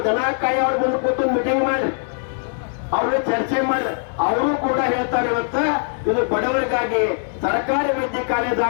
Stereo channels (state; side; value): silent; right; digital silence